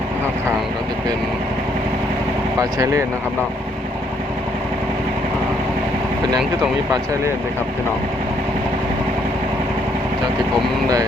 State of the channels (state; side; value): normal; both; correlation 0.70